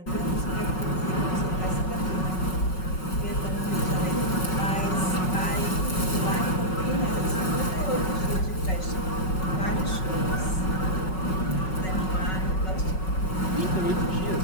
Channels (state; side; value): late; right; 5.4 ms